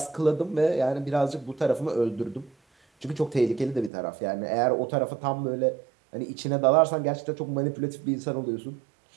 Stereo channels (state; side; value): drops out; left; at 3.9 s